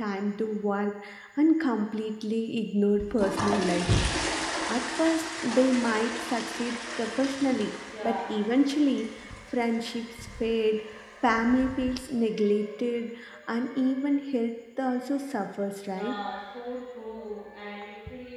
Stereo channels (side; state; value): both; identical; correlation 1.00